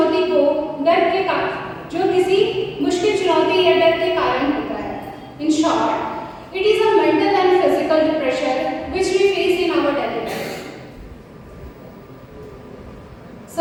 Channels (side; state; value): both; identical; correlation 1.00